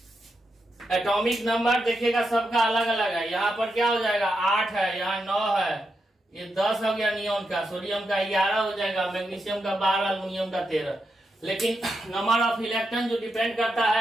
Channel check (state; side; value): normal; both; correlation 0.85